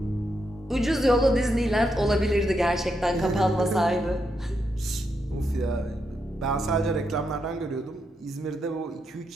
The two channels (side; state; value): both; normal; correlation 0.82